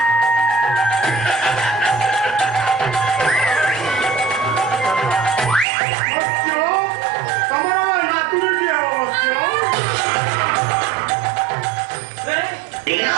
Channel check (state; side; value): drops out; left; at 5.7 s